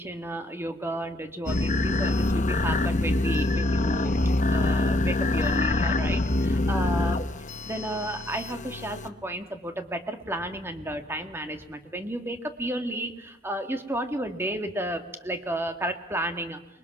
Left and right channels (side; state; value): both; normal; correlation 0.68